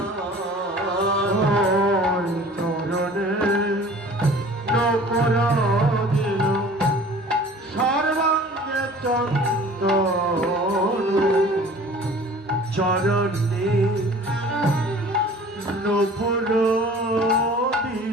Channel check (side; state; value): both; normal; correlation 0.46